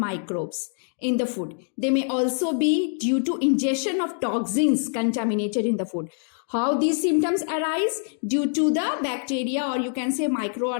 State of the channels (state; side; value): silent; right; 62 dB below the other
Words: in the food. They may also be due to ingestion of toxins contaminated in the food. How these symptoms arise? Due to the bacteria, or you can say